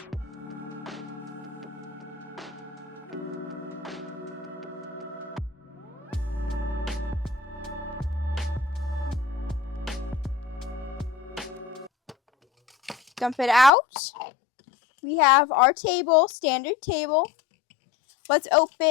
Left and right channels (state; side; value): drops out; right; at 13.7 s